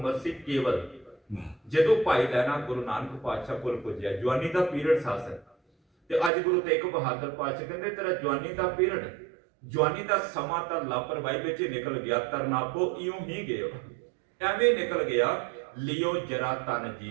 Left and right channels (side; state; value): left; drops out; at 6.3 s